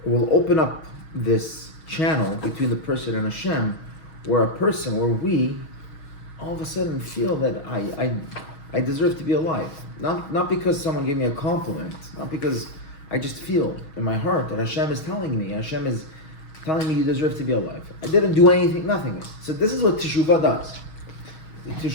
it will open up this channel between the person and Hashem, where we, all of a sudden feel that I deserve to be alive. Not because someone gave me a compliment, not because I just feel in my heart that Hashem is telling me, Hashem is telling me you deserve to be alive. I didn't do anything, nothing. So this is what teshuvah does. The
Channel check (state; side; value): late; right; 6.3 ms